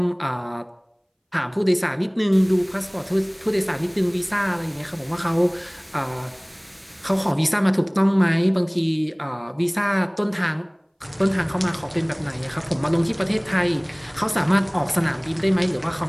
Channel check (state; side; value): identical; both; correlation 1.00